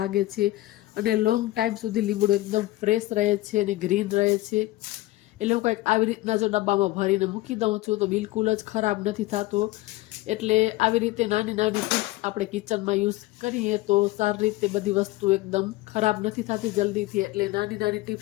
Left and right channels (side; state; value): right; quieter; 18.2 dB